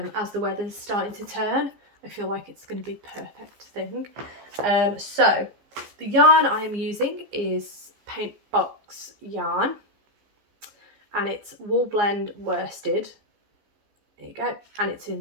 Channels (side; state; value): left; late; 15 ms